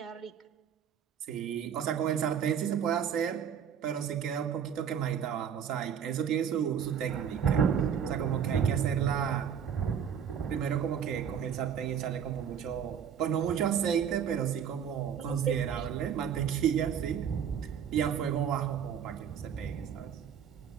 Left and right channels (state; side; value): quieter; left; 8.2 dB